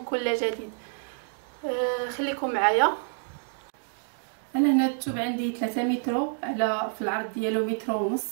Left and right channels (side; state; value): left; silent; digital silence